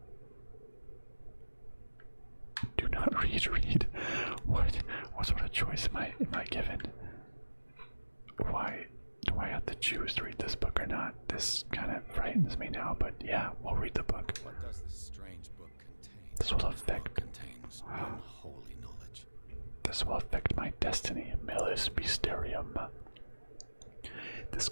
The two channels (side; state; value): both; inverted; correlation -1.00